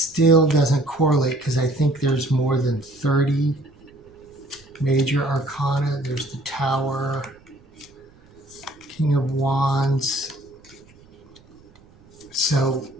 doesn't correlate, because I think there's more than 30 major arcana. There's the Tower, King of Wands. So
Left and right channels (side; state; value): right; noise; rumble, 27 dB below the sound